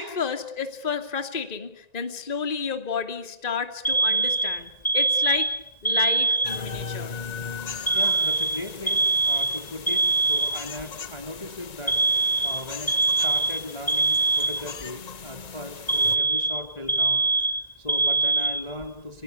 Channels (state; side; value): late; right; 1.9 ms